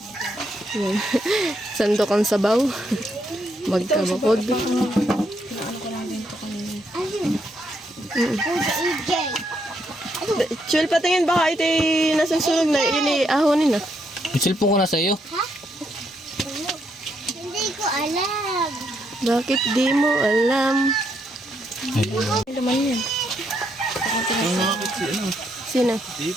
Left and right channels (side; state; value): both; normal; correlation 0.76